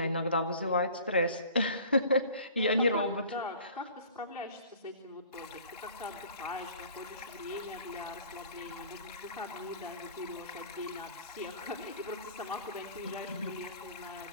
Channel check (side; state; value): both; inverted; correlation -0.47